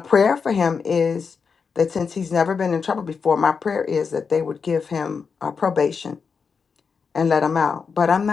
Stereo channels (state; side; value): quieter; right; 5.6 dB